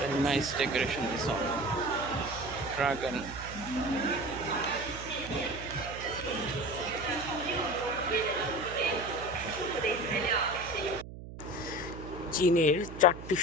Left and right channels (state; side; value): noise; right; hum, 12 dB below the sound